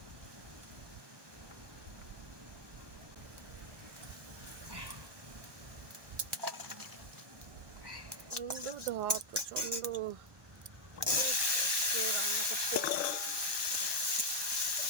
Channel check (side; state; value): left; late; 1.2 ms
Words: প্রচন্ড ধোয়া, প্রচন্ড রান্না করতে।